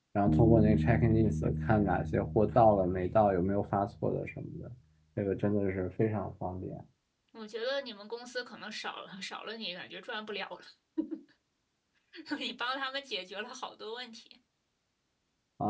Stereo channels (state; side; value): identical; both; correlation 1.00